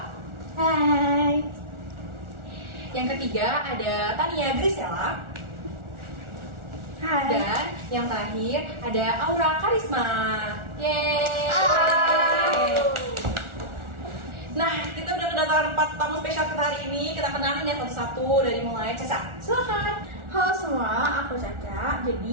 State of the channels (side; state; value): left; late; 1.4 ms